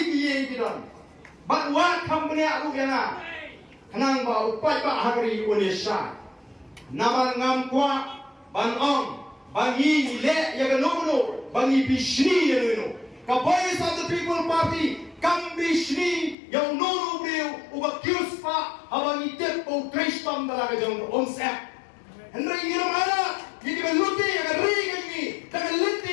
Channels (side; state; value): right; drops out; at 16.4 s